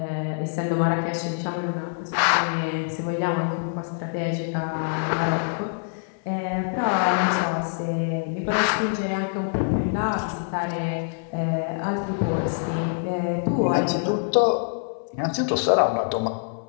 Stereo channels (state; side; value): silent; right; 58 dB below the other